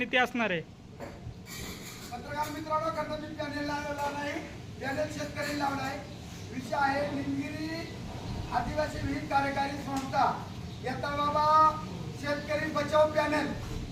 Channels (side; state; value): both; identical; correlation 1.00